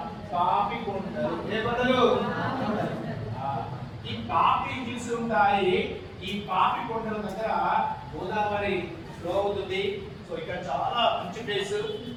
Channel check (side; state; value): both; identical; correlation 1.00